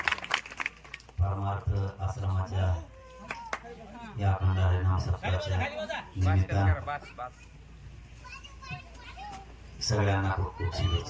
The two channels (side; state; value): both; identical; correlation 1.00